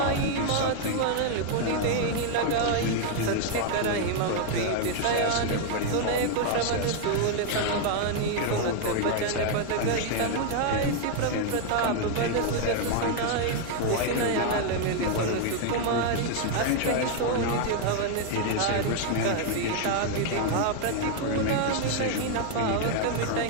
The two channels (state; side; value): different; both; correlation 0.00